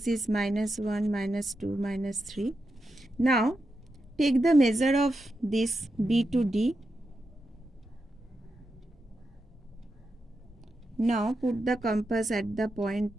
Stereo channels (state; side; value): normal; both; correlation 0.87